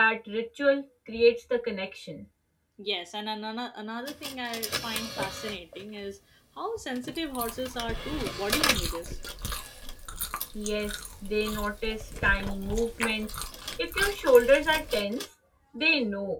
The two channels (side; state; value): both; identical; correlation 1.00